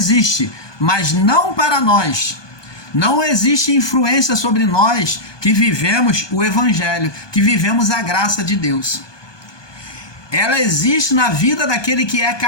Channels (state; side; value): late; right; 1.2 ms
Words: mas não para nós. Não existe influência sobre nós que vivemos o Evangelho, que vivemos a graça de Deus. Ela existe na vida daquele que é